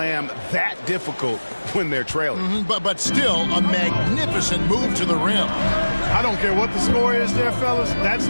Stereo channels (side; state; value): both; inverted; correlation -1.00